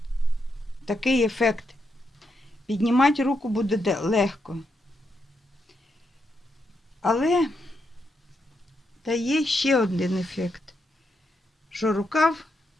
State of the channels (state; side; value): normal; both; correlation 0.82